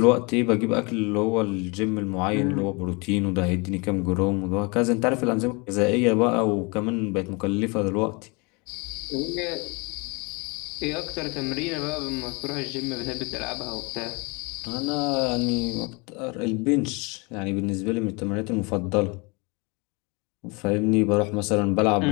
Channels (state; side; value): quieter; right; 28.9 dB